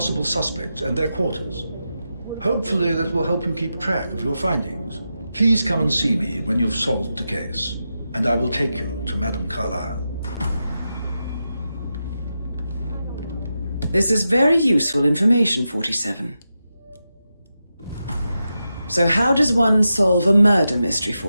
suspects and their quarters. Hopefully that will help you keep track of your findings. Please come and see me when you've solved the case, and I will take you to Madame Carlyle. This is very useful information, 47. So how does one solve a murder mystery,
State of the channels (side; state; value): both; inverted; correlation -0.89